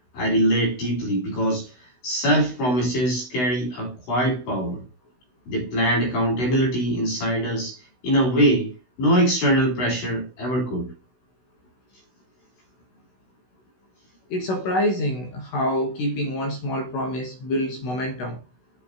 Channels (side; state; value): right; late; 16 ms